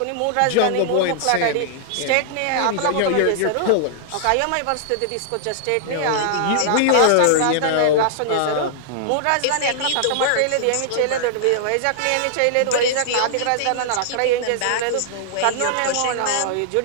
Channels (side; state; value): both; different; correlation -0.01